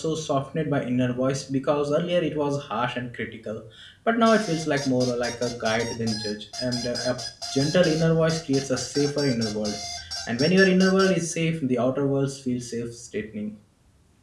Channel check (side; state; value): both; identical; correlation 1.00